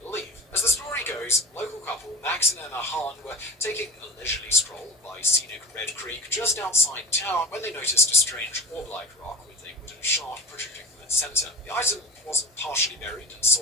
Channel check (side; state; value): both; normal; correlation 0.35